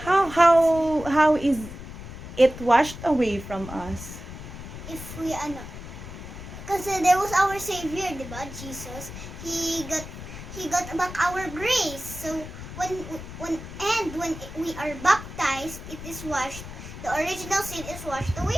How is it washed away from us? If we because there was our Savior, diba, Jesus. He got back our grace. So when we are baptized, it is washed. The original sin is washed away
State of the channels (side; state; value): left; noise; rumble, 11 dB below the sound